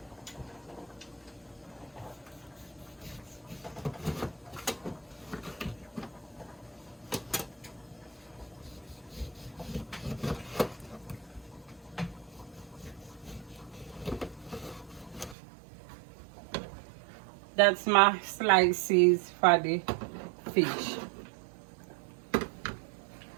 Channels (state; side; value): drops out; left; at 15.4 s